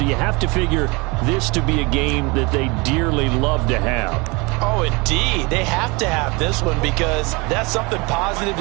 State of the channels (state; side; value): quieter; left; 27.0 dB